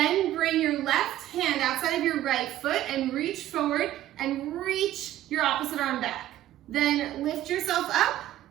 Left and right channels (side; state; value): left; quieter; 13.4 dB